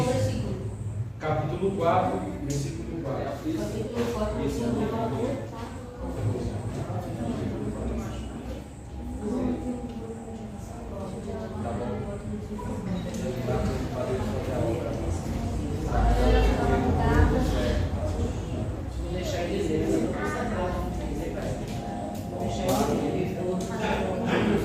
Capítulo 4, versículo 4. Isso.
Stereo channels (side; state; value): both; identical; correlation 1.00